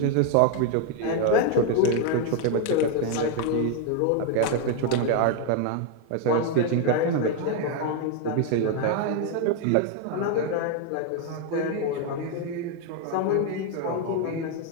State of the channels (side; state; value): both; different; correlation 0.01